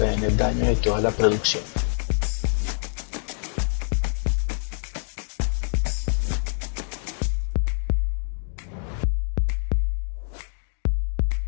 el daño de toda la producción.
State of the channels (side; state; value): right; silent; 62 dB below the other